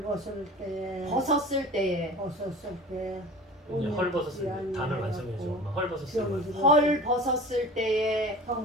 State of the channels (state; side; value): normal; both; correlation 0.39